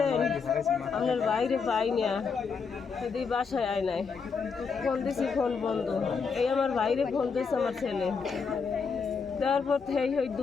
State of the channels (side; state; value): right; quieter; 5.4 dB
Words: আপনার বাইরে পাই না, যদি বাসায় আয় নাই। ফোন দিছি, ফোন বন্ধ। এই আমার বাইরে ফোন দিয়েছে আমার ছেলে। তারপর ওই